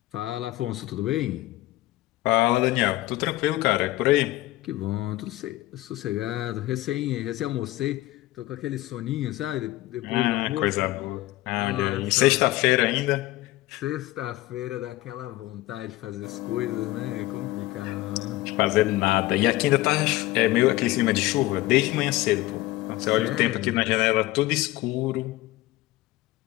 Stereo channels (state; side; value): quieter; right; 17.4 dB